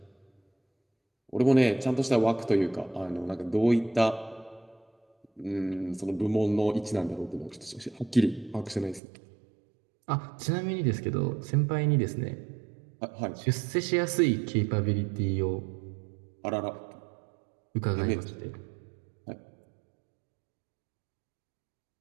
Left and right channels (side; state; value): left; drops out; at 9.0 s